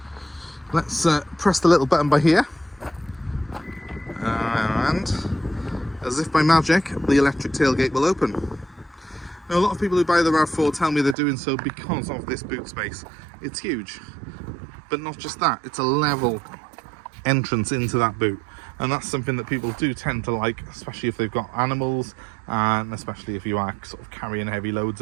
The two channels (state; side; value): drops out; left; at 11.2 s